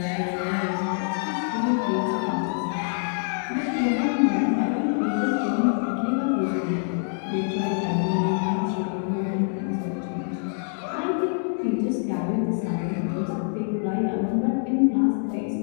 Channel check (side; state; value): right; silent; 61 dB below the other